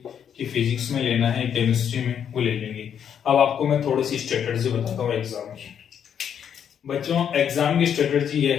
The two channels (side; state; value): right; quieter; 8.4 dB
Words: कि फिजिक्स में लेना है, केमिस्ट्री में, वो ले लेंगे। अब आपको मैं थोड़ी सी स्ट्रेटजी बताता हूँ एग्जाम की। बच्चों, एग्जाम की स्ट्रेटजी ये